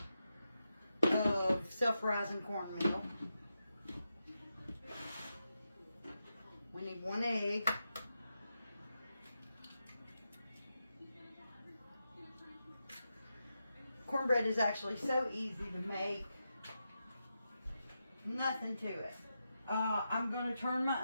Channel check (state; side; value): inverted; both; correlation -0.88